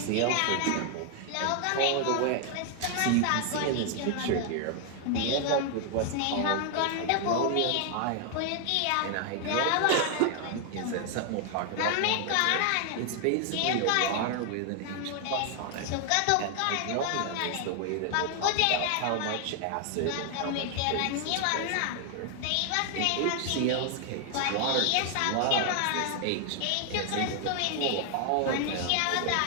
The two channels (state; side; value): different; both; correlation 0.00